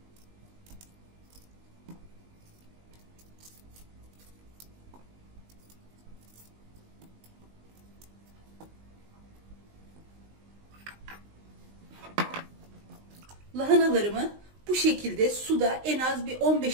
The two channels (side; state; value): left; late; 19 ms